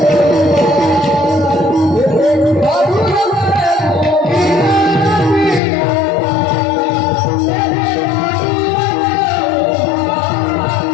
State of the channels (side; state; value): right; drops out; at 5.6 s